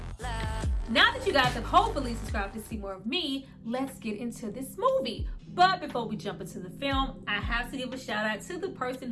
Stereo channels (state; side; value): identical; both; correlation 1.00